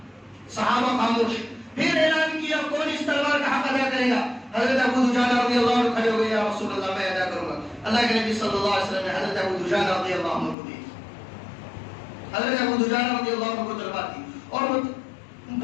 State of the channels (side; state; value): right; drops out; at 10.6 s